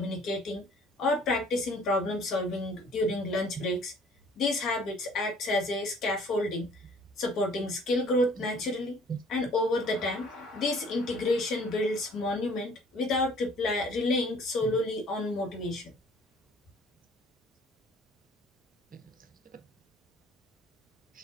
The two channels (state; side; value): normal; both; correlation 0.54